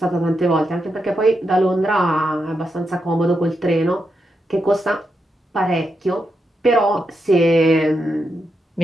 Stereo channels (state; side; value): normal; both; correlation 0.84